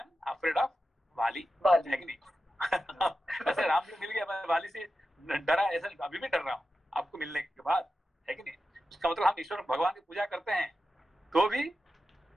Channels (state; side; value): normal; both; correlation 0.91